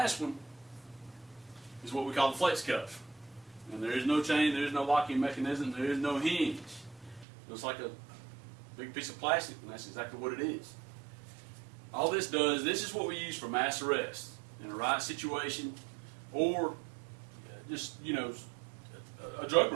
one is what we call the flex cuff. And there is no chain, there is no locking mechanism, there is no hinge. It's like a big piece of plastic, and that's exactly what it is. All this does, this is what we use for mass arrest in a riot situation, or just, a drug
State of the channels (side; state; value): left; drops out; at 7.2 s